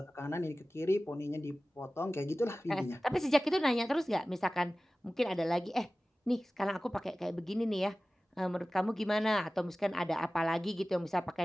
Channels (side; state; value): both; normal; correlation 0.97